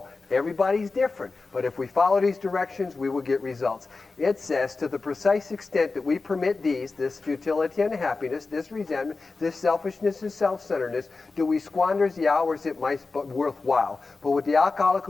Everybody's different. But if we follow these directions, we will get results. It says, to the precise extent that we permit these, this futility and happiness, this resentment, this selfishness and self-centeredness, do we squander the hours it might be worthwhile. But with the alcoholic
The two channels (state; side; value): quieter; right; 3.9 dB